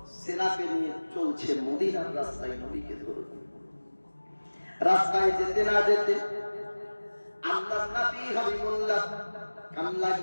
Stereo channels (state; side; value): inverted; both; correlation -1.00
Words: সেনাকে নিয়ে চলছে মদিনার রাস্তায় নবীকে ধরে। রাস্তায় যেতে না যেতে আল্লাহর নবী হাবিবুল্লাহ কান